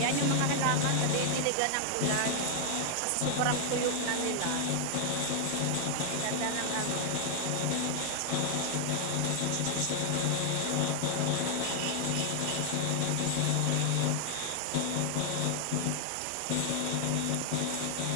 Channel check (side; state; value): both; different; correlation 0.00